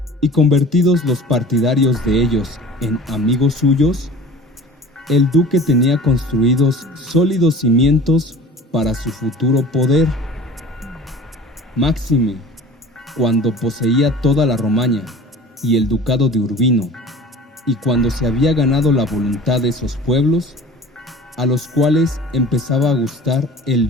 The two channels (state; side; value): normal; both; correlation 0.42